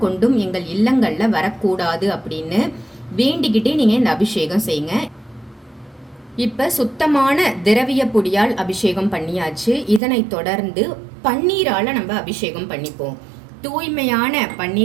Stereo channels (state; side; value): drops out; left; at 10.0 s